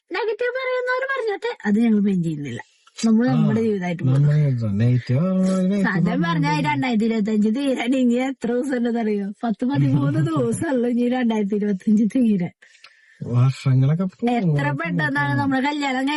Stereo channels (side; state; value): both; identical; correlation 1.00